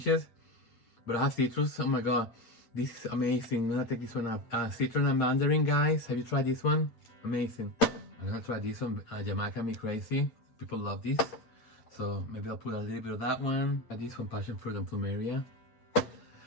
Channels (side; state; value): right; late; 8.6 ms